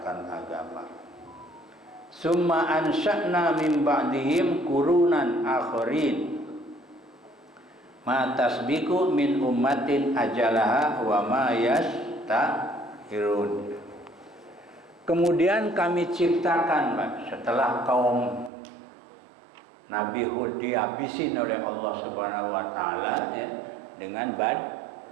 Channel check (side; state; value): left; drops out; at 18.5 s